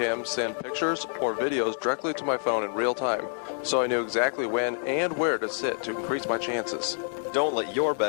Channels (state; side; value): silent; right; digital silence